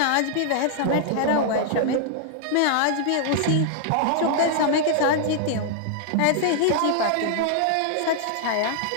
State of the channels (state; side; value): different; both; correlation -0.01